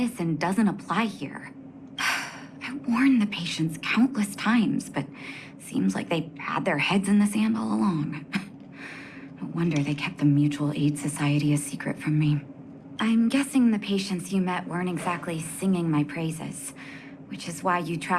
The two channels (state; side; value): identical; both; correlation 1.00